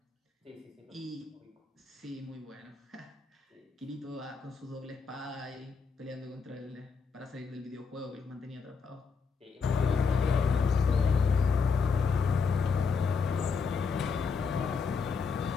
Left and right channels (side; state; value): right; quieter; 5.3 dB